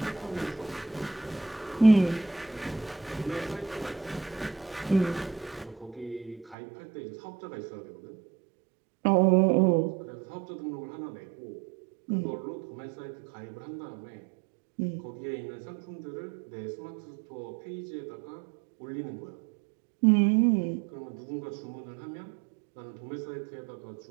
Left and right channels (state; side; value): drops out; left; at 6.6 s